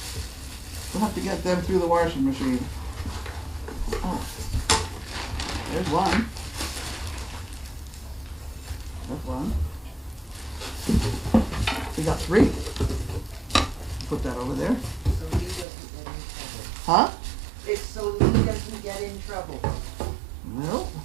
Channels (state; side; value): drops out; left; at 15.7 s